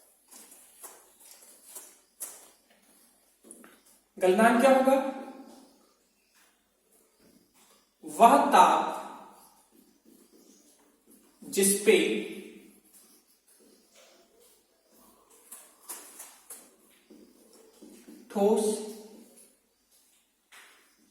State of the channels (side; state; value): both; identical; correlation 1.00